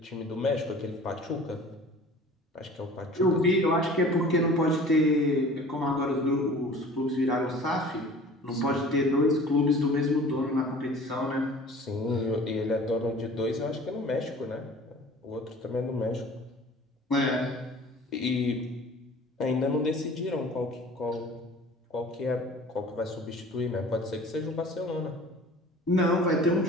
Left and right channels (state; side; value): normal; both; correlation 0.45